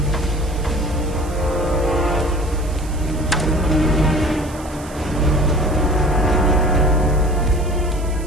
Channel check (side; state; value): right; noise; hiss, 20 dB below the sound